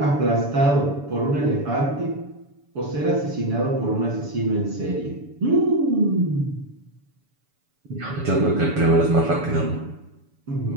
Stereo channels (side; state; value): left; late; 7.0 ms